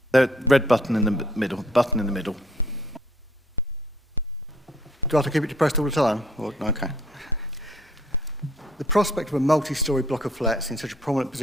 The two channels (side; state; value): both; normal; correlation 0.62